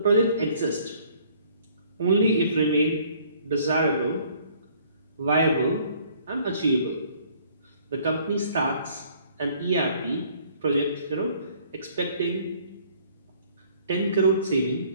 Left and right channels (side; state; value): both; inverted; correlation -0.59